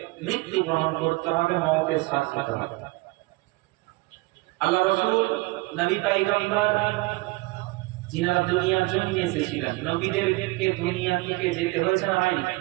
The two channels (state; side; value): quieter; left; 23.2 dB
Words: মৃত্যু গ্রহণ করতে হবে, মওতের সাথ নিতে হবে। আল্লাহ রাসূল, নবী পয়গম্বর যিনারা দুনিয়ার জন্য এসেছিলেন, নবীদেরকে দুনিয়া থেকে যেতে হয়েছে না হয়নি?